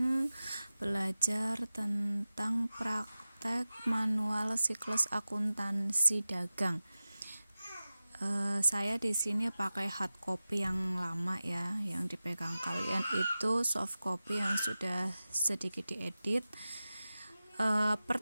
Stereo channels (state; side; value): inverted; both; correlation -0.95